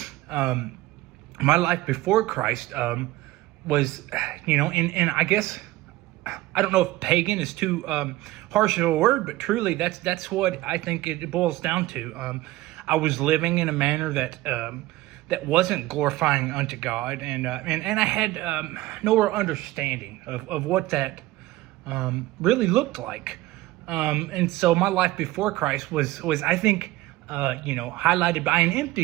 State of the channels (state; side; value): quieter; left; 17.6 dB